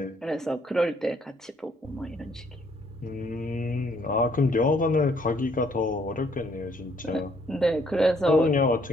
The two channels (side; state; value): both; normal; correlation 0.66